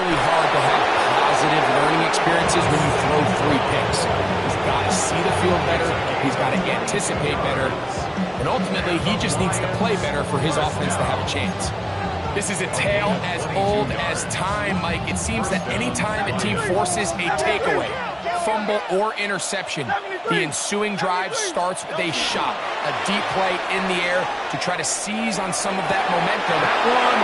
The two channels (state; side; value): identical; both; correlation 1.00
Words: hard to have positive learning experiences when you throw 3 picks. He's got to see the field better. He's got to anticipate better. And ultimately, he just needs to play better for his offense to have a chance. This is a tale as old as time, Mike. It seems that any time a team forces a takeaway, fumble or interception, the ensuing drive starts with a shot, a deep play in the air to try to seize on some of that momentum. That one,